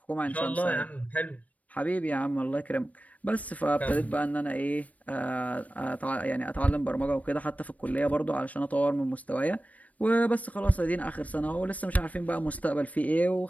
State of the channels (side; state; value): right; late; 0.069 ms